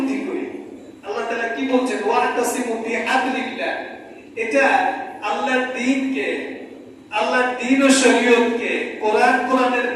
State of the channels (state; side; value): identical; both; correlation 1.00